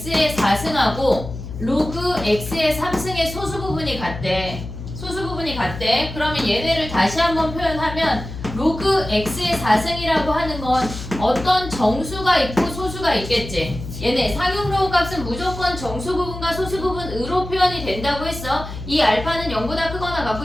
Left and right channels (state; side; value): noise; left; hum, 10 dB below the sound